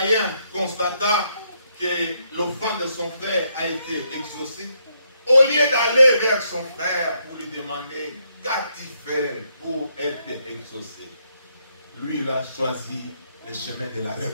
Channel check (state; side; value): inverted; both; correlation -0.75